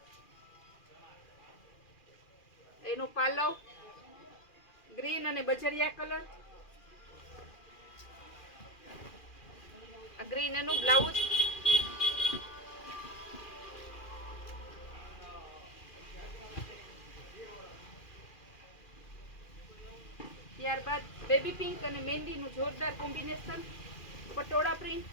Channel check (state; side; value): late; right; 2.4 ms